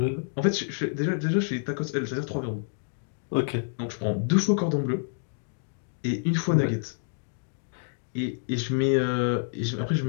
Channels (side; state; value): right; silent; digital silence